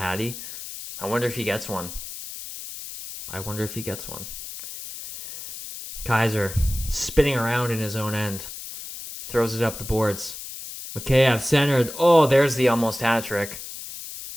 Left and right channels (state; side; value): noise; left; hiss, 11 dB below the sound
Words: I wonder if he gets one. Kaiser spinning around in his own end. Throws it up the boards. Mikheyev centered. Oh, there's the almost hat trick.